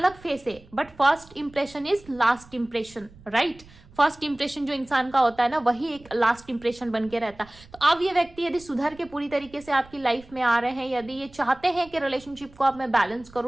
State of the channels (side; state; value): right; noise; rumble, 23 dB below the sound